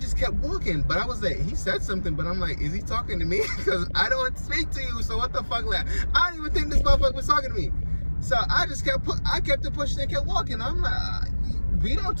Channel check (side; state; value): both; inverted; correlation -1.00